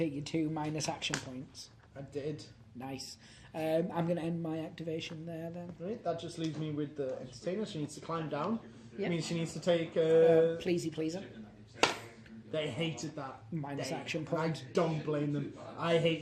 your 2 minus action points? I did. Nice. I'm going to end my activation there then. Right, that just leaves me with the entertainer. She needs to climb down. Yep. Means she needs to take. Pleasey pleaser. They hated that. Minus They- action I point. don't blame them. I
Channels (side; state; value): both; identical; correlation 1.00